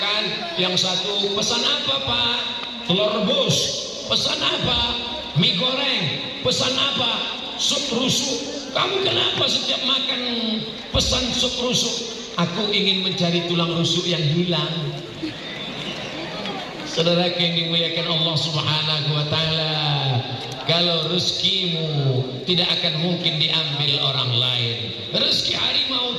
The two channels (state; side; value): identical; both; correlation 1.00